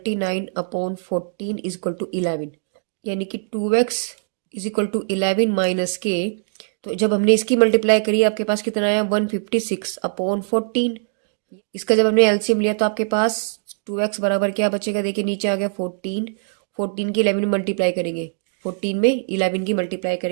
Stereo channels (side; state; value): left; silent; digital silence